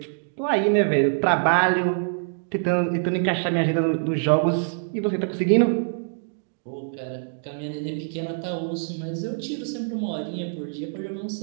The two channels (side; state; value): left; silent; digital silence